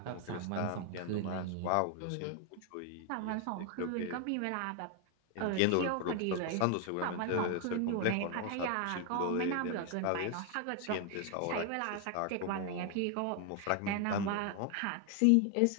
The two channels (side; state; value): both; different; correlation 0.00